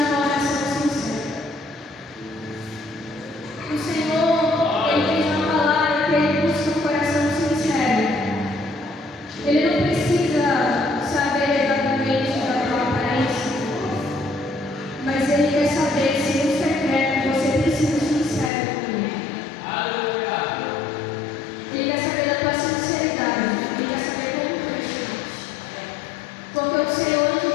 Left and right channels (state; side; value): drops out; right; at 18.5 s